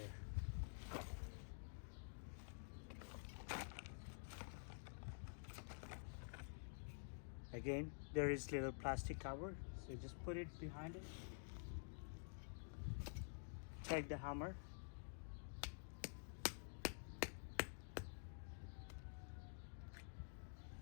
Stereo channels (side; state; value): right; silent; digital silence